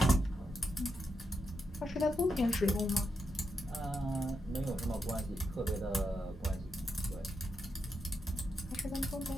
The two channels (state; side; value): normal; both; correlation 0.84